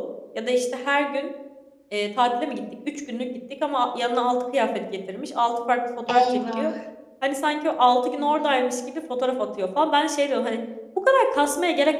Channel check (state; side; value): identical; both; correlation 1.00